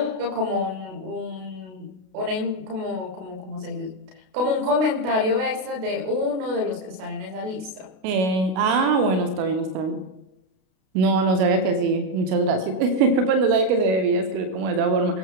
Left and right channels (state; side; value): late; left; 32 ms